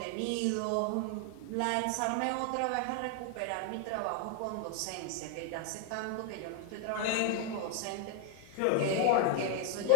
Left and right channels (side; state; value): both; different; correlation 0.00